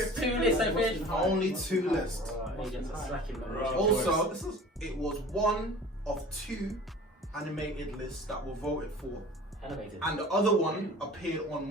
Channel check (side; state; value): both; normal; correlation 0.43